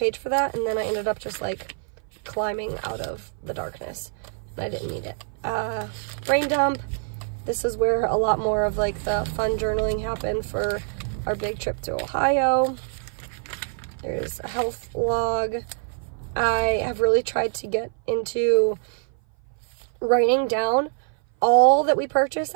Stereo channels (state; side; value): silent; left; 58 dB below the other